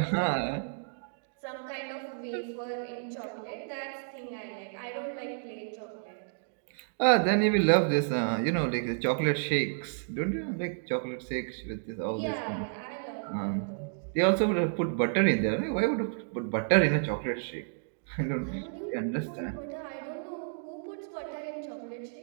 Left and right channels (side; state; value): left; silent; digital silence